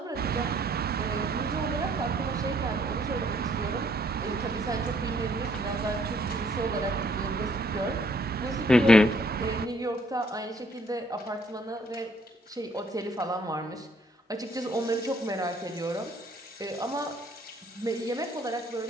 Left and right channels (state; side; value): normal; both; correlation 0.65